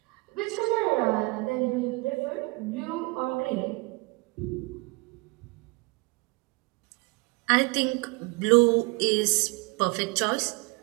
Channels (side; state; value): left; quieter; 26.4 dB